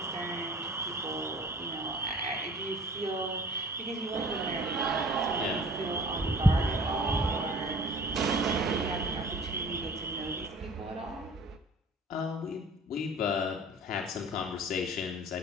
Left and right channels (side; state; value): both; normal; correlation 0.47